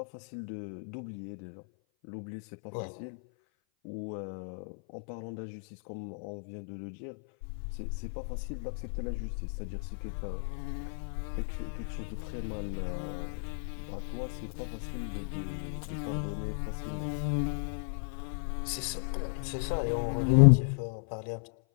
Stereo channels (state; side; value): silent; right; 55 dB below the other